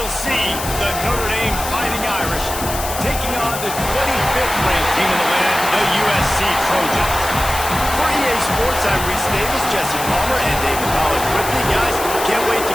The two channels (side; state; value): left; noise; hiss, 7 dB below the sound